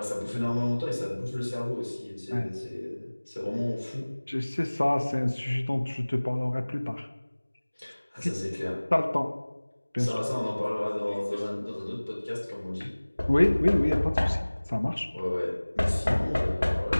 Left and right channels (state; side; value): inverted; both; correlation -1.00